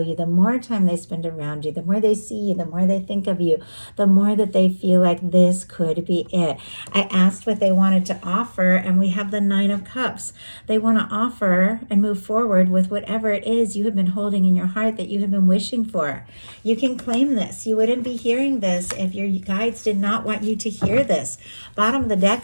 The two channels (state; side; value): inverted; both; correlation -1.00